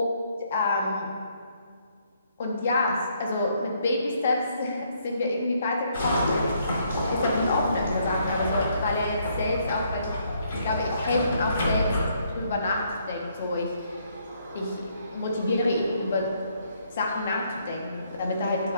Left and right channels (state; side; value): inverted; both; correlation -0.70